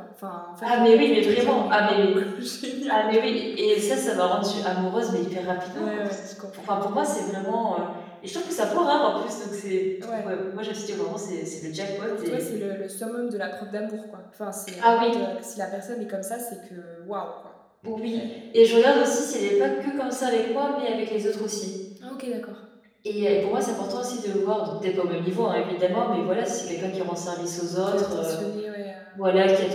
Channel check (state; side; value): identical; both; correlation 1.00